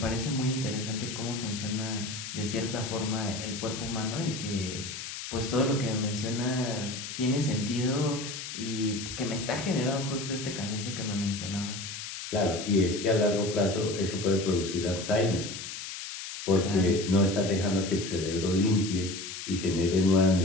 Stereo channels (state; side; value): noise; left; hiss, 8 dB below the sound